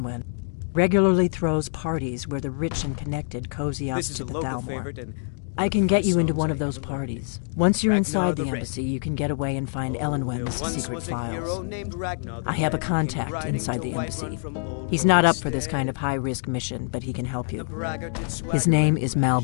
regularly throws parties where the rich and connected cozy up to the Thalmor. I can get you into one of those parties. Once you're inside the embassy, you can get away and find Elenwen's secret files. I have a contact inside the embassy. He's not up for this kind of high-risk mission, but he can help you. His name is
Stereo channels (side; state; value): right; silent; digital silence